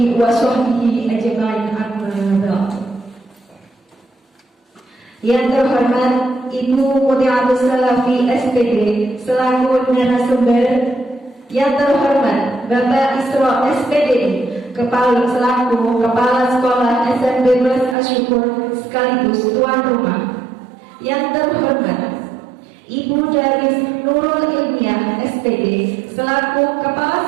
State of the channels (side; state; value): left; drops out; at 17.9 s